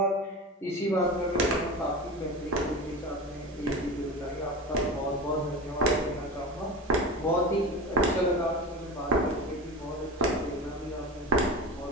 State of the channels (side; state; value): both; normal; correlation 0.29